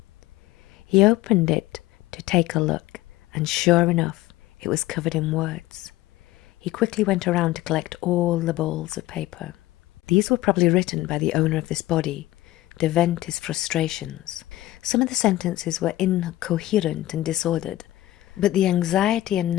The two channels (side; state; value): right; quieter; 16.3 dB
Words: He opened it to take a look, and sure enough, it was covered in words. He quickly went around to collect all the balls of paper. These were probably written by the owner of this body to vent his frustrations. Some of the sentences were incoherent and disordered, but the anxiety and